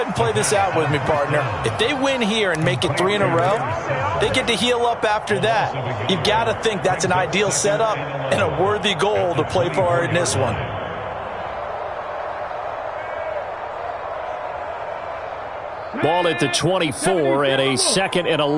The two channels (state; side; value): identical; both; correlation 1.00